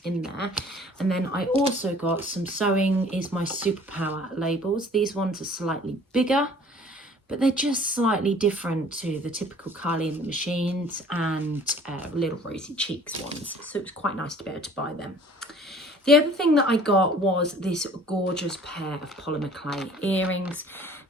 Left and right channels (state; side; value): normal; both; correlation 0.52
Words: in there. And then I also got some Sewing is My Superpower labels. These ones are slightly bigger, but they're just slightly different to the typical Carly and the Machines and Little Rosy Cheeks ones. So it was quite nice to be able to buy them. The other thing that I got was this gorgeous pair of polymer clay earrings.